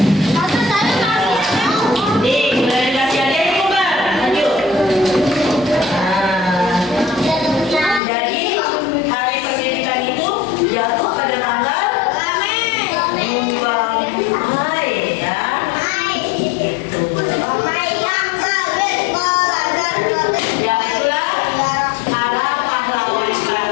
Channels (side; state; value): right; drops out; at 8.0 s